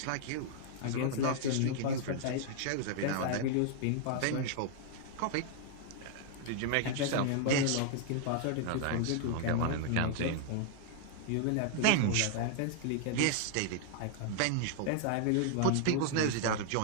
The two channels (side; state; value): both; different; correlation 0.00